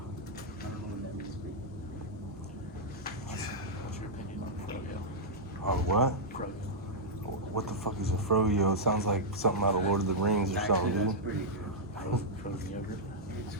don't know what that means, but What's your opinion on Froyo? Oh, what? Froyo. What the fuck is a froyo? It sounds like something out of Lord of the Rings or actually, something, that's dude. pretty good. Frozen yogurt. It's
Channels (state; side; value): normal; both; correlation -0.07